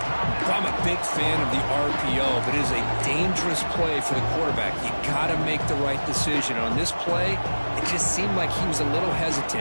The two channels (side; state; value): both; inverted; correlation -1.00